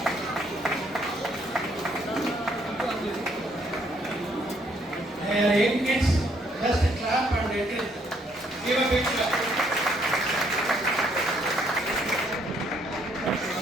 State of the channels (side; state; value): both; normal; correlation 0.68